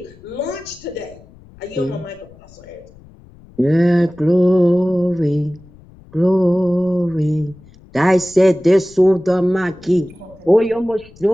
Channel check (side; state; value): left; noise; rumble, 24 dB below the sound